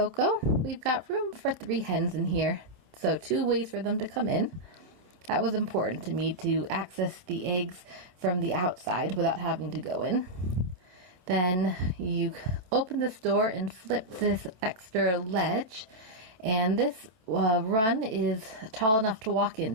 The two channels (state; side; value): late; left; 27 ms